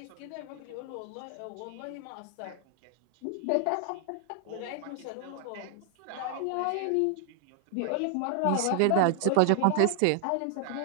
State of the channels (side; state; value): both; different; correlation 0.00